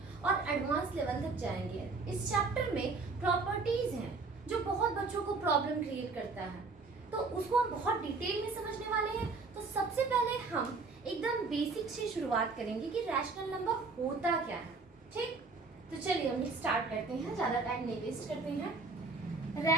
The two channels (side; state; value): left; quieter; 4.0 dB